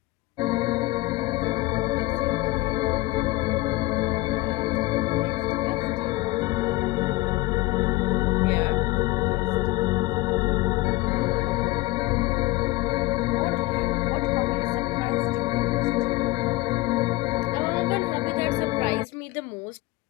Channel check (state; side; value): quieter; right; 20.1 dB